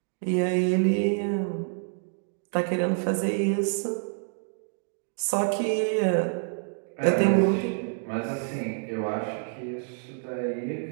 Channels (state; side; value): silent; left; 60 dB below the other